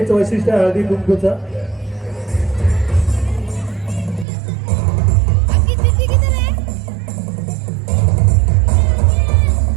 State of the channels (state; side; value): drops out; left; at 4.2 s